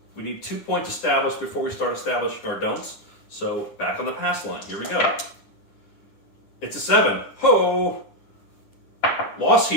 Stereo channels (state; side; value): late; right; 9.9 ms